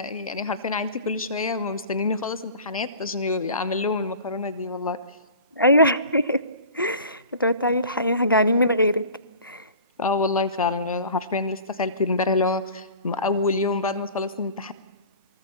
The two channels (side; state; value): both; inverted; correlation -0.41